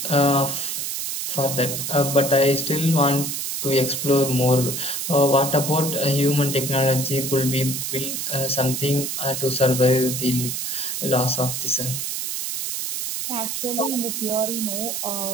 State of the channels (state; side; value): noise; right; hiss, 3 dB below the sound